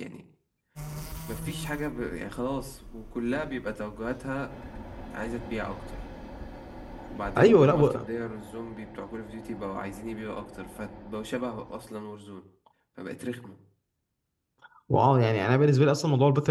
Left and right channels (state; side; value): identical; both; correlation 1.00